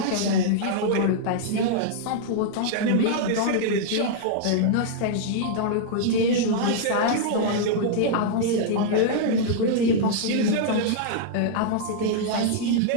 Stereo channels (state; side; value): different; both; correlation -0.01